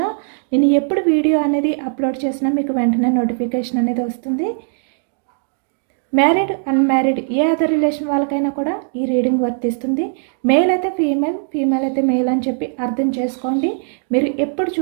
నేను ఎప్పుడు వీడియో అనేది అప్లోడ్ చేసినా మీకు వెంటనే నోటిఫికేషన్ అనేది వస్తుంది. మ్యారీడ్, అన్మ్యారీడ్ ఏ అదర్ రిలేషన్ వాళ్ళకైనా కూడా ఈ రీడింగ్ వర్తిస్తుంది. మేల్ అయితే ఫీమేల్, ఫీమేల్ అయితే మేల్ అని చెప్పి అర్థం చేసుకోండి. మీరు ఎప్పుడు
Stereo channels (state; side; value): silent; left; digital silence